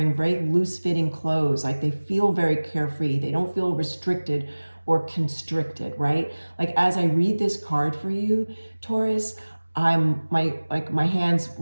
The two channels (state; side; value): inverted; both; correlation -1.00